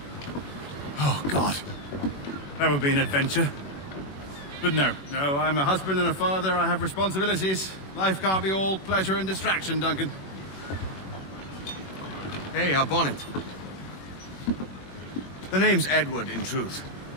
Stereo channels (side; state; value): right; late; 21 ms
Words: Oh, God. That would be an adventure. But no, I'm a husband and a father. I have responsibilities. Life can't be all pleasure and distraction, Duncan. Hey, our bonnet. The name's Edward, in truth.